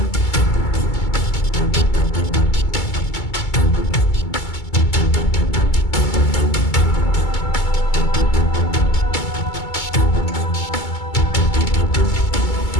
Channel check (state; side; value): late; right; 2.2 ms